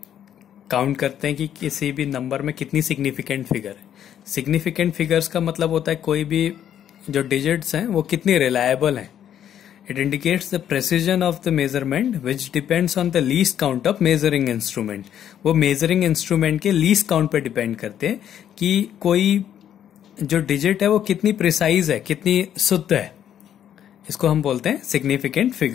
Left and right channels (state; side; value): quieter; right; 10.0 dB